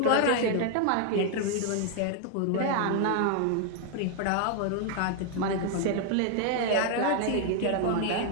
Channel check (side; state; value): both; different; correlation 0.00